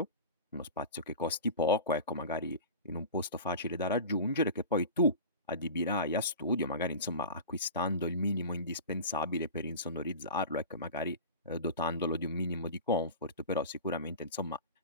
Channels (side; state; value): both; inverted; correlation -0.33